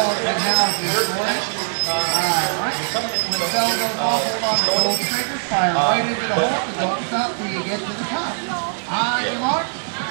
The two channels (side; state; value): left; silent; 64 dB below the other